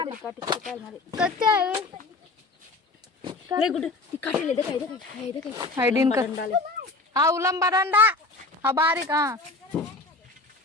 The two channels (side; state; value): right; quieter; 3.4 dB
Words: हायडीन कर हा उलंबा दंडा हा बारीक हा